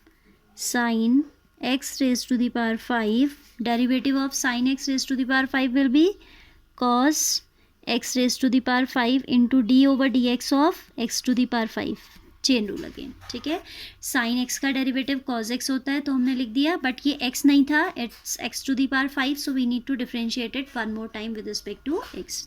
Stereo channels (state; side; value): identical; both; correlation 1.00